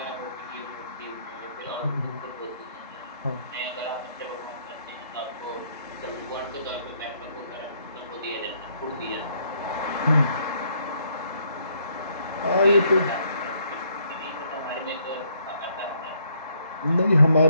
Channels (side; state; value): both; inverted; correlation -0.69